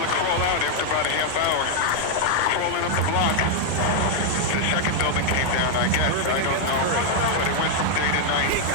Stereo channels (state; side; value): different; both; correlation 0.00